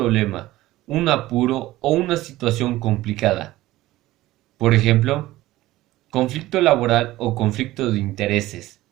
un apuro o una situación complicada. Por ejemplo, conflicto laboral o conflicto de intereses.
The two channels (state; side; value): quieter; left; 16.8 dB